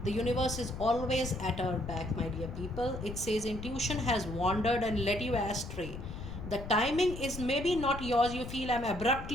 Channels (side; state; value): left; noise; rumble, 9 dB below the sound